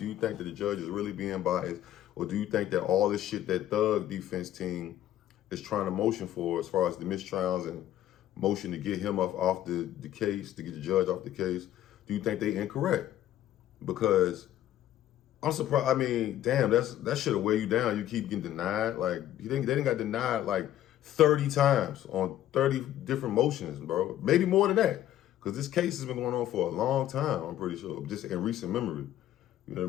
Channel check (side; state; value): right; quieter; 12.5 dB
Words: you think that the judge is really being biased? Or do you think that all this shit that Thug defense team is trying to motion for, as far as the mistrials and motion to get him off the case, to get the judge off the case, do you think they incorrect? Because I'm surprised. I mean, damn, that should have weighed you down. You keep getting denied. Like, they didn't got denied like 30 times on 30 different motions, bro. Maybe more than that. Because this case has been going on for a long time, I'm pretty sure, just in recent memory. You know what